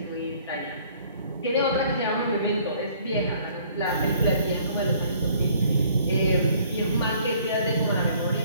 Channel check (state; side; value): inverted; both; correlation -0.58